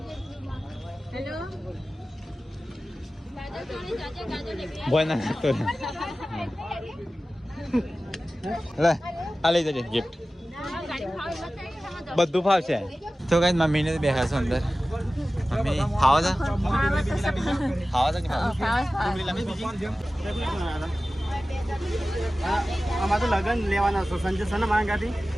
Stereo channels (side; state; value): both; normal; correlation 0.96